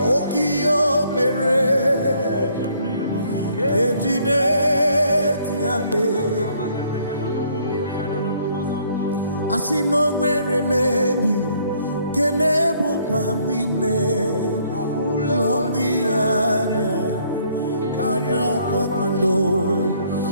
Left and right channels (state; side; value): inverted; both; correlation -0.65